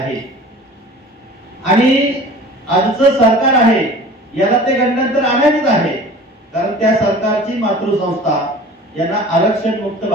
आणि आजचं सरकार आहे याला ते गंडांतर आणायचंच आहे, कारण त्या सरकारची मातृसंस्था यांना आरक्षण मुक्त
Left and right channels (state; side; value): normal; both; correlation 0.43